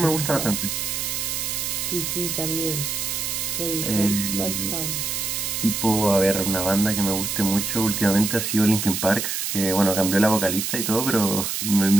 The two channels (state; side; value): noise; right; hiss, 2 dB below the sound